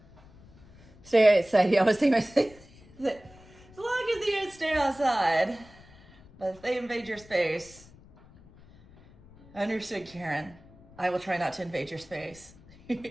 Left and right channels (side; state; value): left; noise; rumble, 24 dB below the sound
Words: Stay outside. I always think myself that as long as the ants stay outside, but if they invade your space, understood, Karen. I will try not to invade your space.